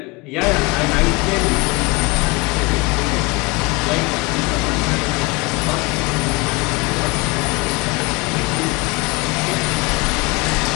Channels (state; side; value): quieter; right; 26.2 dB